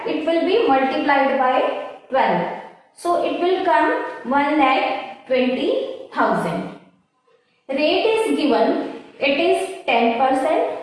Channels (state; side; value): identical; both; correlation 1.00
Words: it will be multiplied by 12. So it will come 1,20,000. Rate is given, it is 10%.